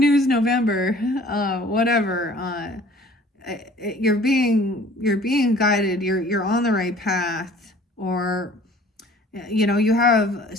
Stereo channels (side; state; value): both; normal; correlation 0.51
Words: November. Whatever. You're being guided. You're on the right path, or you know, you have